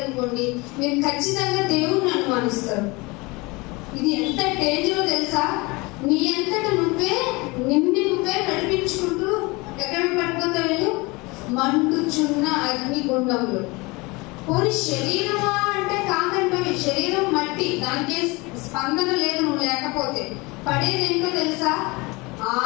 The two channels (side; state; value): right; quieter; 24.9 dB